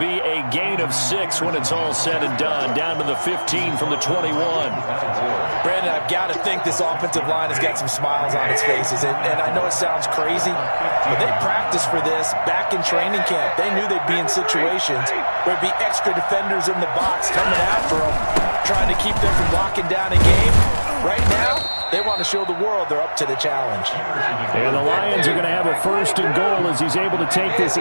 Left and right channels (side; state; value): both; inverted; correlation -1.00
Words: be a gain of 6 when it's all said and done, down to the 15 from the 21. Brandon, I've got to think this offensive line has got some smiles on its faces. And I know it sounds crazy, but they practiced for this back in training camp. They knew they'd be in situations where there'd be extra defenders in the box coming after them, trying to keep them from locking down a game. Right now, they want to show the world they're up to the challenge. And the Lions are going to have a 1st and goal as he's able to take this